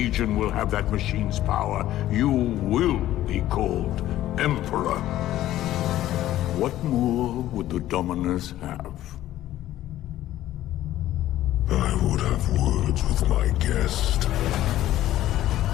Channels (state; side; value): quieter; right; 13.8 dB